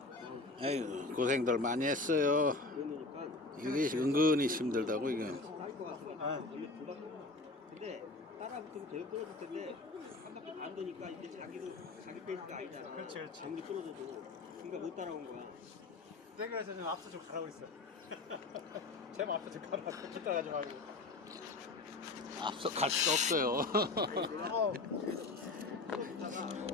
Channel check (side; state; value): right; quieter; 3.3 dB